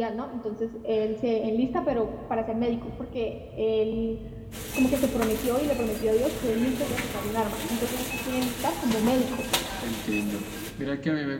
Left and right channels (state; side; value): identical; both; correlation 1.00